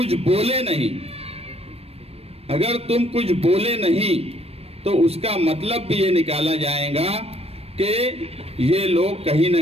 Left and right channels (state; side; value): late; left; 0.29 ms